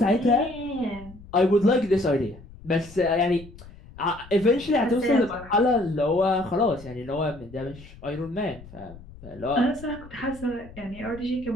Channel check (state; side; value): noise; left; rumble, 19 dB below the sound